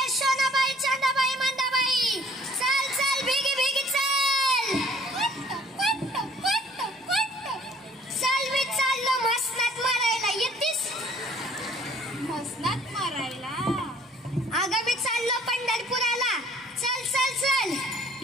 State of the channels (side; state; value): both; normal; correlation 0.56